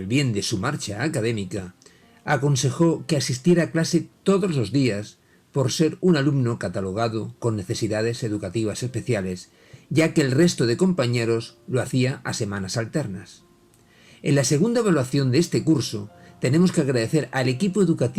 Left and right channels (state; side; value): identical; both; correlation 1.00